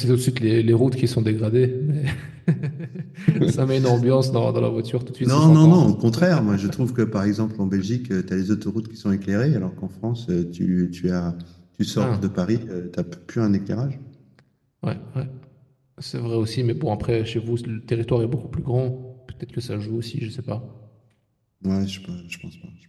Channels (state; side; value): identical; both; correlation 1.00